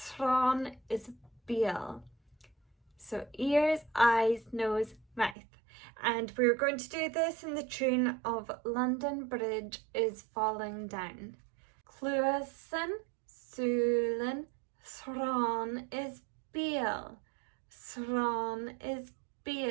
is Beal. So ears, eyes, nose, mouth. And we're going to do this in the tune of London Bridge is Falling Down. Cluasan, Sulin, Thron is Beal. Thron is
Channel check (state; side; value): drops out; left; at 5.4 s